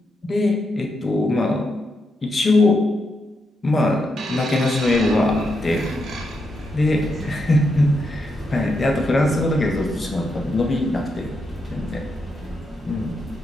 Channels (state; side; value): normal; both; correlation 0.83